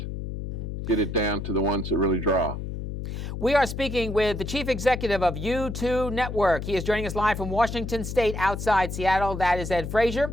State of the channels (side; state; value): left; noise; hum, 6 dB below the sound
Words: get it down to the ones that really draw. We are speaking with the chief executive of YouToo Network. He is joining us live from Washington State outside Seattle. That is Ed Frazier.